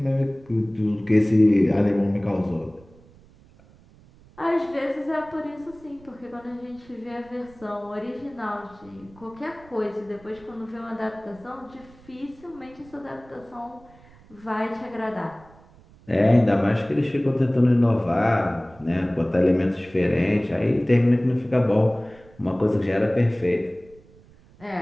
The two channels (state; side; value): noise; right; rumble, 26 dB below the sound